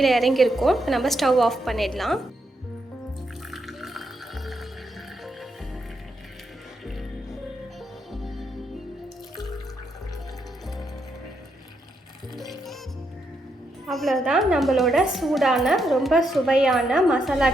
இறங்கியிருக்கும். நம்ம ஸ்டவ் ஆஃப் பண்ணிடலாம். அவ்வளோதான், நம்மளோட சூடான ரொம்ப சுவையான மசாலா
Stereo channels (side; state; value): both; normal; correlation 0.80